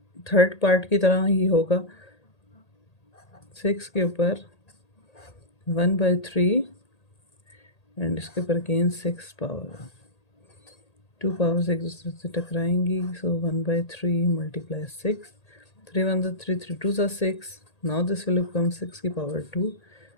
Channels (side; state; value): right; late; 1.8 ms